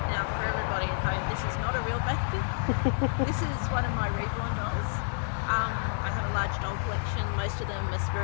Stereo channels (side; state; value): right; silent; digital silence